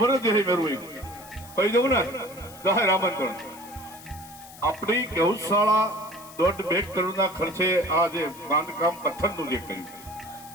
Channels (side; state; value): left; noise; hiss, 19 dB below the sound